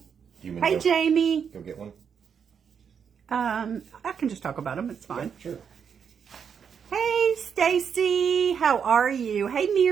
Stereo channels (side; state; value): left; quieter; 7.1 dB